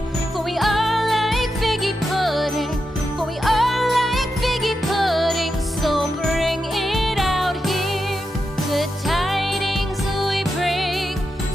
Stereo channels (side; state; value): both; normal; correlation 0.87